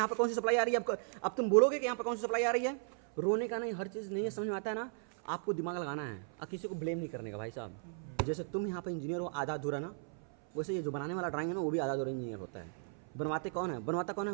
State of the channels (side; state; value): left; silent; 54 dB below the other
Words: पर कौन सी सप्लाई आ रही है, अब तुम बोलोगे कि यहाँ पर कौन सी सप्लाई आ रही है, रोने का नहीं, हर चीज़ नहीं है, समझ में आता है ना, आपको दिमाग लगाना है और किसी को ब्लेम नहीं करने का भाई साहब। जैसे तुम यहाँ पर इंजीनियर हो आधा अधूरा ना, वैसे ये जो बनाने वाला ड्राइंग है ना, वो भी आधा अधूरा इंजीनियर होता है। बनवाता कौन है,